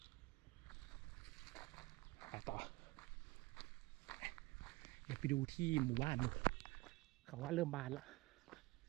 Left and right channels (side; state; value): left; quieter; 20.9 dB